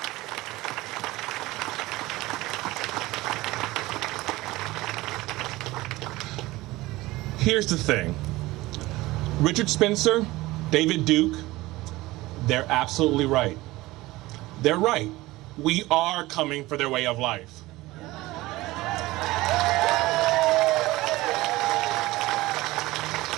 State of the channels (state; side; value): quieter; left; 19.1 dB